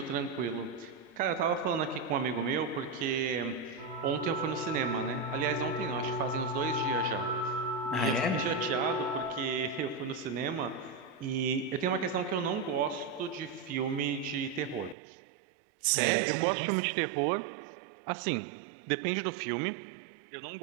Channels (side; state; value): left; drops out; at 15.0 s